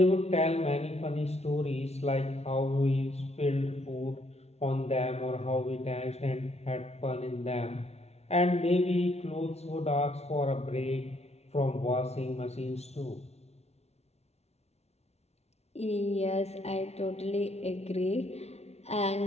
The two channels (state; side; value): late; right; 0.31 ms